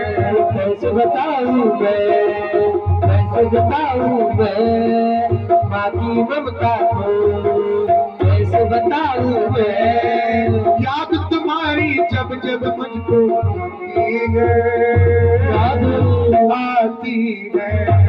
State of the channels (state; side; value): identical; both; correlation 1.00